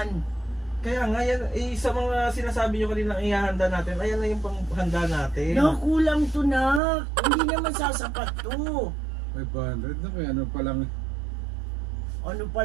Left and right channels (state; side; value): drops out; left; at 6.8 s